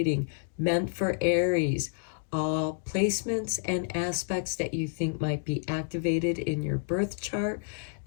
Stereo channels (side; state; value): right; silent; digital silence